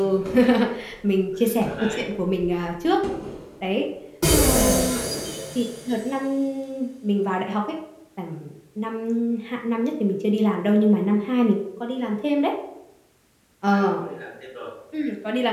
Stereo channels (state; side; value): identical; both; correlation 1.00